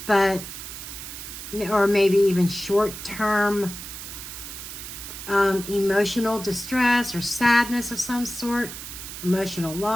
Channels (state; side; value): noise; right; hiss, 10 dB below the sound